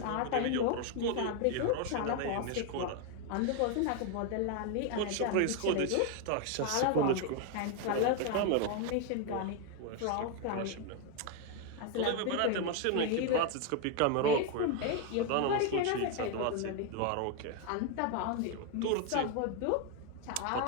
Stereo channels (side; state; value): both; different; correlation 0.01